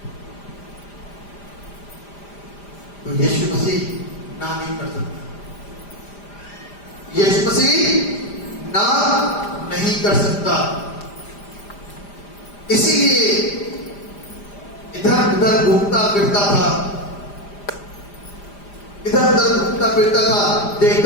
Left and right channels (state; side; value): late; right; 5.0 ms